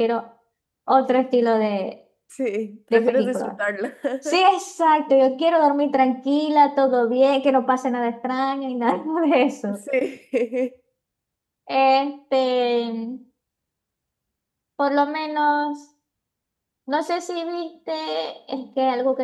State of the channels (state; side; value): identical; both; correlation 1.00